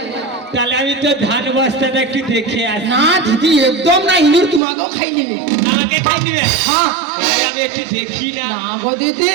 তাহলে আমি তো ধান বস্তাটা একটু দেখে আসি। না দিদি, একদম না, ইঁদুর তোমাকেও খাই নেবে। আমাকে খাই দিবে? হ্যাঁ। আমি একটু দেখি না। না গো দিদি,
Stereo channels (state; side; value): drops out; left; at 4.6 s